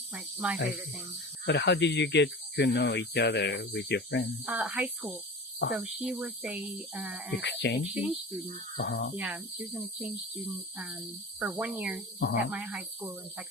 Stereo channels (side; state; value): both; normal; correlation 0.34